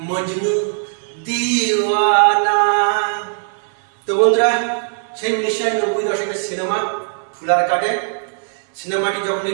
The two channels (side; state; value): left; silent; digital silence